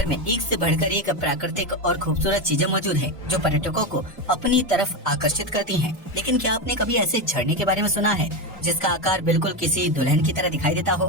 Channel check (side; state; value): both; normal; correlation 0.14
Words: में एक से बढ़कर एक प्राकृतिक और खूबसूरत चीजें मौजूद है जो पर्यटकों को अपनी तरफ आकर्षित करती हैं। लेकिन क्या आपने कभी ऐसे झरने के बारे में सुना है जिसका आकार बिल्कुल किसी दुल्हन की तरह दिखाई देता